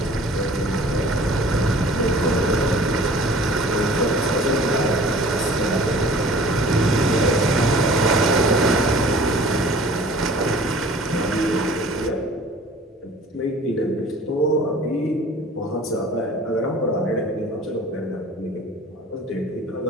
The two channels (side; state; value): both; normal; correlation 0.48